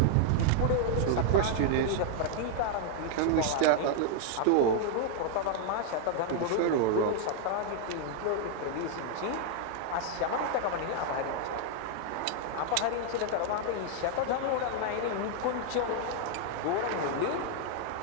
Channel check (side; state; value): both; different; correlation 0.00